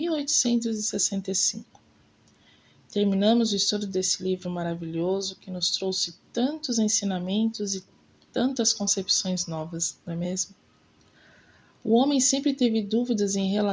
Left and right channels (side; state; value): both; identical; correlation 1.00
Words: Terminamos o estudo desse livro maravilhoso que nos trouxe tantos ensinamentos e tantas concepções novas, não é mesmo? O homem sempre teve dúvidas em